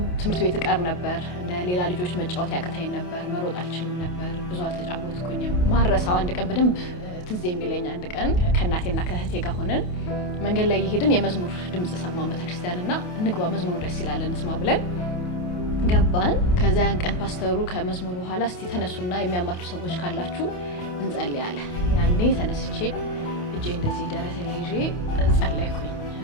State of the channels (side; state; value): right; late; 28 ms